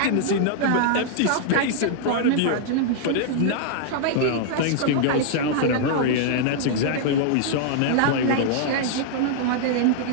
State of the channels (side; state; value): both; different; correlation -0.01